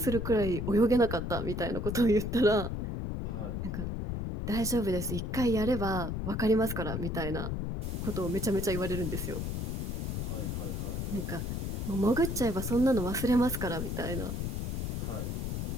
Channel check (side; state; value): left; noise; rumble, 2 dB below the sound